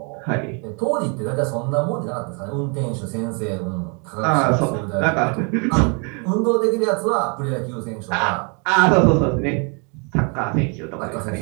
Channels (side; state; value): left; quieter; 35.5 dB